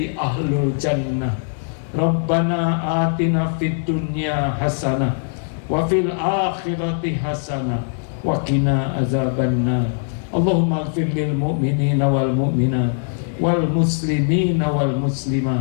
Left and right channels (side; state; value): right; silent; 65 dB below the other